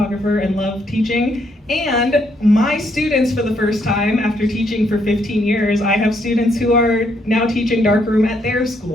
and love teaching. And my students, for the first time, after teaching for 15 years, I have students who are now teaching darkroom at their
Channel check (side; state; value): both; normal; correlation 0.73